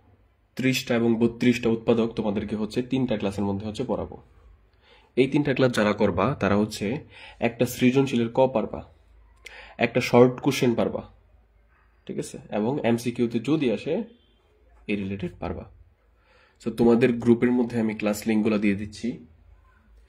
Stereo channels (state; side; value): identical; both; correlation 1.00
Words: 30টা এবং 32টা উৎপাদক তোমাদেরকে হচ্ছে 3টা ক্লাসের মধ্যে হচ্ছে পড়াবো। এই 3টা ক্লাস যারা করবা তারা হচ্ছে একটা সৃজনশীলের ক পারবা, একটা শর্ট কোশ্চেন পারবা, ঠিক আছে, এবং এমসিকিউতে যদি আসে এই রিলেটেড পারবা। সো তোমাদের গ্রুপের মধ্যে আমি ক্লাস লিঙ্কগুলো দিয়ে দিচ্ছি,